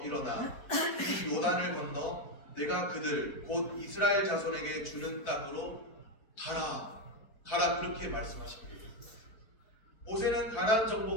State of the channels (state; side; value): late; right; 4.4 ms